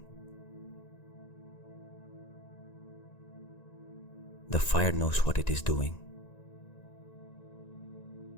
The fire knows what it is doing.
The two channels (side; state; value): right; late; 1.9 ms